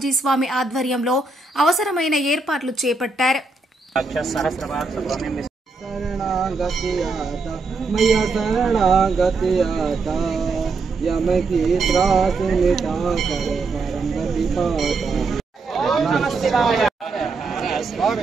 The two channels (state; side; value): quieter; left; 3.9 dB